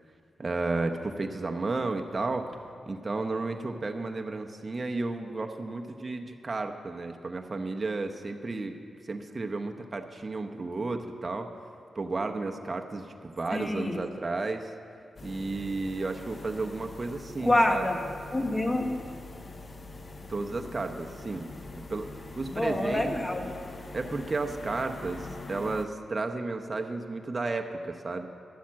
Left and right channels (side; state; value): both; normal; correlation 0.93